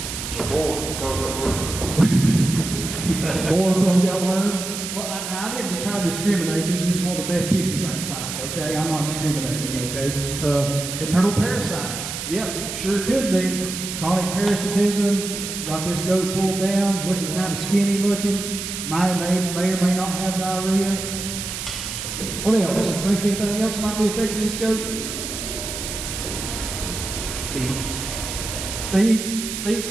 Boar got worms. Well, I didn't try to discriminate. This is just one of the best pictures I can find. Okay, I'm not discriminating. Okay. Internal parasites. Yep, sure could be. Chronic parasitism. Got this goat pulled down, looking kind of skinny looking. May or may not have diarrhea. What else? Think anything else might be affecting this goat? Feed.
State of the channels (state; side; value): noise; right; hiss, 6 dB below the sound